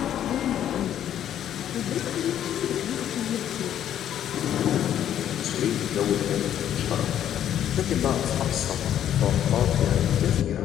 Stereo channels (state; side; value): quieter; right; 10.6 dB